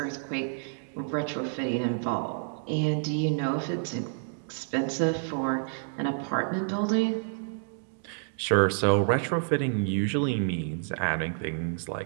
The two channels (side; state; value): left; silent; digital silence